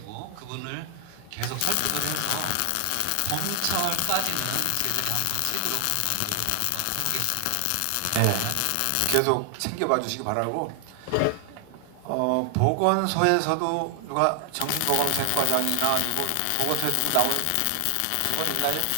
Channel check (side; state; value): both; different; correlation 0.00